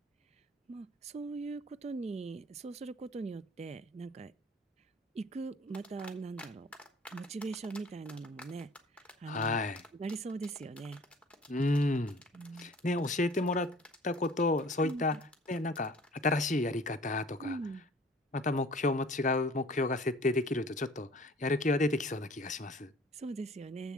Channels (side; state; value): both; normal; correlation 0.49